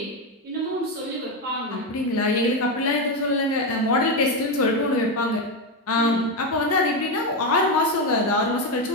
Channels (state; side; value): normal; both; correlation 0.10